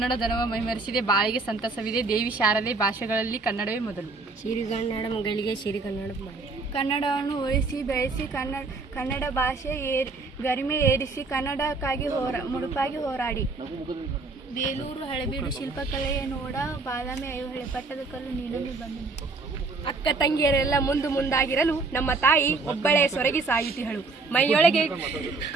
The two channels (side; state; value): left; quieter; 3.8 dB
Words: ಧನವ ಮೈಮರೆಸಿದೆ, ಬಾಳಿಗೆ ಸಂತಸವಿದೆ, ದೇವಿ ಶಾರದೆ, ಭಾಷೆಗಳಲ್ಲಿ ಕನ್ನಡವೇ ಮೊದಲು. ಸಿರಿಗನ್ನಡ ಮಗಳಿಗೆ ಸಿರಿಗನ್ನಡ ಕನ್ನಡವನ್ನು ಉಳಿಸಿ ಬೆಳೆಸಿ, ಕನ್ನಡ ಭಾಷೆ ಗರಿಮೆ ಏರಿಸಿ, ಕನ್ನಡಕ್ಕಾಗಿ ಮುಡುಪಾಗಿ ಹೋರಾಡಿ. ಬೇಲೂರು ಹಳೆಬೀಡು ಶಿಲ್ಪಕಲೆಯ ನೋಡ, ಬಾದಾಮಿ ಐಹೊಳೆ ಪಟ್ಟದ ಕಲ್ಲು ನೀಡಲು ಬಂದು. ಅಕ್ಕ ತಂಗಿಯರೆಲ್ಲ ಮುಂದಾಗಿರಲು ನಮ್ಮ ತಾಯಿ ಒಬ್ಬಳೇ ಸೊರಗಿ ಸಾಯುತ್ತಿಹಳು.